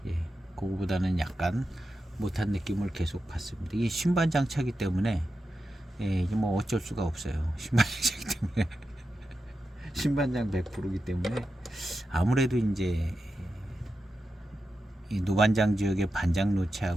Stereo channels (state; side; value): normal; both; correlation 0.90